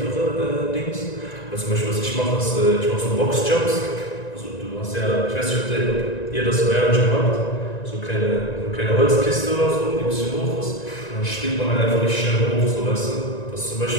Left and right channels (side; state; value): right; late; 1.9 ms